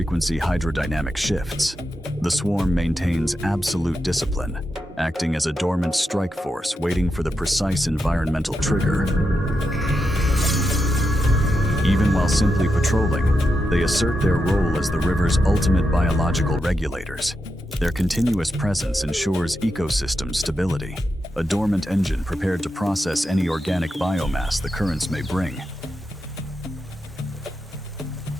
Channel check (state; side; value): normal; both; correlation 0.86